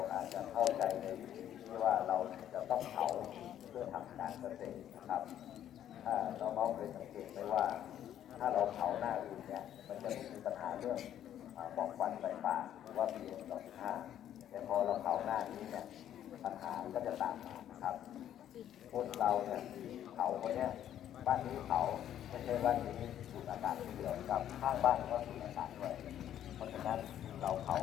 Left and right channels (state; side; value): quieter; right; 10.9 dB